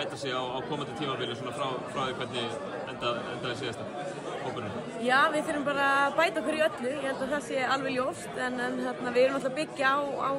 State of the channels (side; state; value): both; identical; correlation 1.00